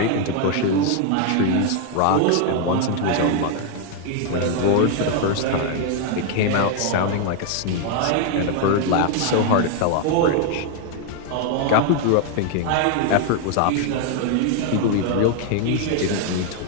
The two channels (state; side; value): different; both; correlation 0.00